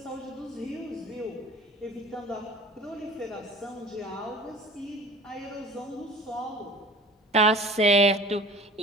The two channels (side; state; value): both; normal; correlation 0.43